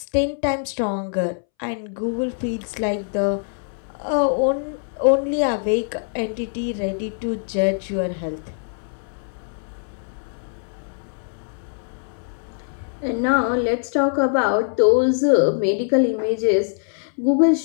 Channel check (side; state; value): right; silent; 63 dB below the other